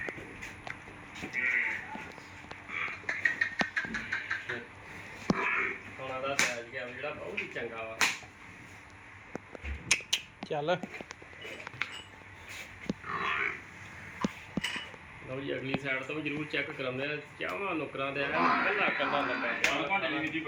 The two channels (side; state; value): both; identical; correlation 1.00